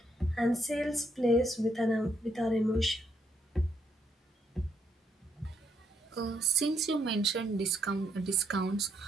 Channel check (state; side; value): normal; both; correlation 0.74